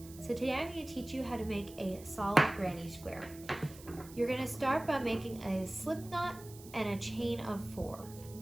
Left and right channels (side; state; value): right; noise; hiss, 18 dB below the sound